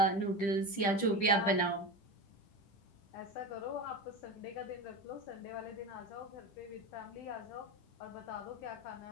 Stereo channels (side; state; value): right; late; 10 ms